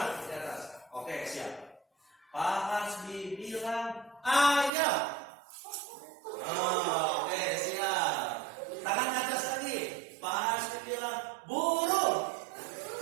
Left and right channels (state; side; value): drops out; left; at 4.7 s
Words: di atas. Oke, siap. Pak Hasbi bilang ayam. Oke, siap. Tangan ke atas lagi. Pak Hasbi bilang burung.